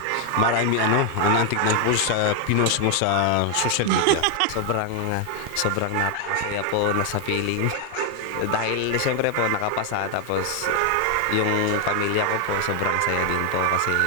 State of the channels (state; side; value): different; both; correlation 0.00